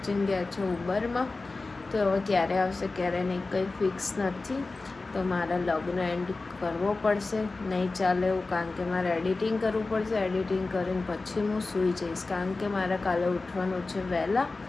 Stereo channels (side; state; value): right; quieter; 3.6 dB